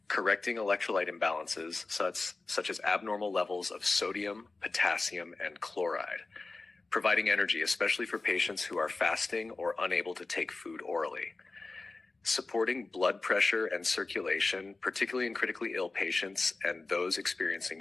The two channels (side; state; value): right; quieter; 3.5 dB